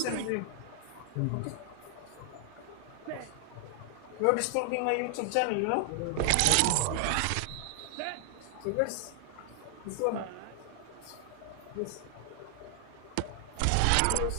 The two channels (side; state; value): both; different; correlation 0.00